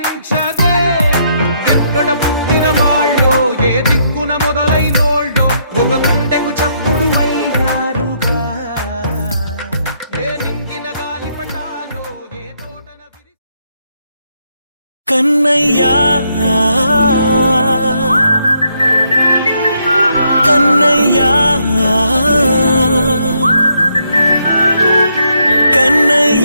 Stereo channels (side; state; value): both; inverted; correlation -0.74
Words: ఎక్కడ పుట్టిన వాళ్ళో ఏ దిక్కున మొదలైనోళ్ళో ఒక గుండెకు చప్పుడు అయ్యారుగా ఏ దింగిన గాలి పటాలో ఏ తోటన విరి కన్నయ్యా కన్నయ్యా